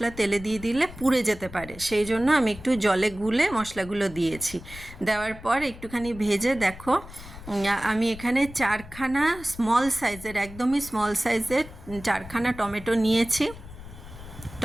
তেলে দিয়ে দিলে পুড়ে যেতে পারে, সেই জন্য আমি একটু জলে গুলে মশলাগুলো দিয়েছি। দেওয়ার পর একটুখানি ভেজে দেখো, আমি এখানে চারখানা স্মল সাইজের, একদমই স্মল সাইজের চারখানা টমেটো নিয়েছি।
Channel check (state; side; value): noise; left; rumble, 15 dB below the sound